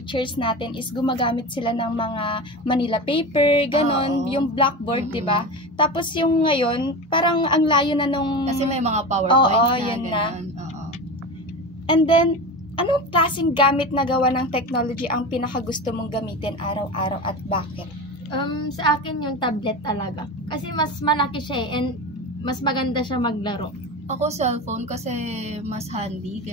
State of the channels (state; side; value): normal; both; correlation 0.26